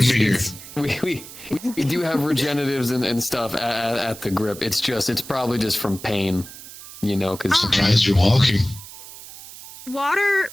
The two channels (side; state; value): right; noise; hiss, 15 dB below the sound